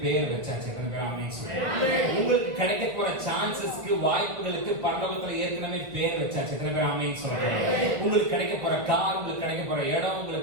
பேர் வச்சாச்சு. எத்தனை பேர் ஆமென் சொல்றாங்க? உங்களுக்கு கிடைக்க போற சான்சஸ்க்கு, வாய்ப்புகளுக்கு பரலோகத்துல ஏற்கனவே பேர் வச்சாச்சு. எத்தனை பேர் ஆமென் சொல்றாங்க? உங்களுக்கு கிடைக்க போற கார், உங்களுக்கு கிடைக்க போற இடம்,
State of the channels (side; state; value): left; late; 1.3 ms